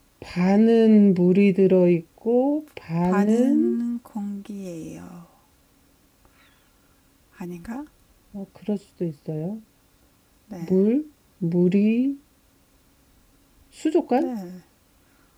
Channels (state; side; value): identical; both; correlation 1.00